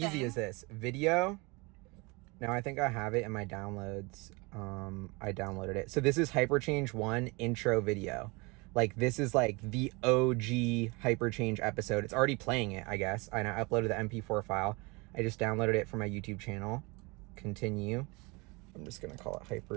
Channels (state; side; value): quieter; left; 27.0 dB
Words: easy is this? Video. Now I think I have it in my downloads. I downloaded it. So this is HyperChange 1 intro video. Like this is like the OG HyperChange episode. It's already playing it, I guess. And I uploaded the MP4 file. I just downloaded it from my YouTube channel. Continue. I'm just gonna call it